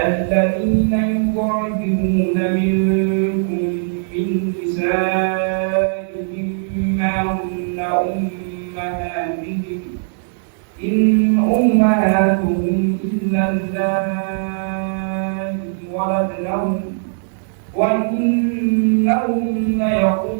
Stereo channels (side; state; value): left; silent; digital silence